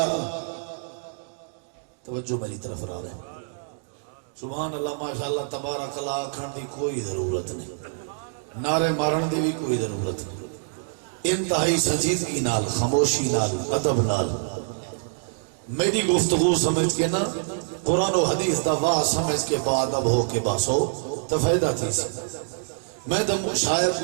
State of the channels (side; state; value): left; silent; digital silence